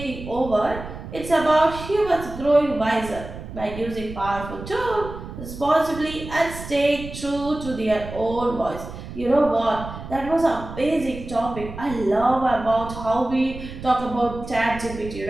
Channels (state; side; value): noise; right; rumble, 11 dB below the sound